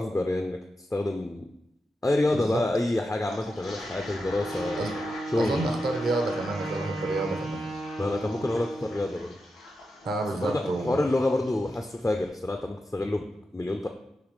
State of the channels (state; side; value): normal; both; correlation 0.88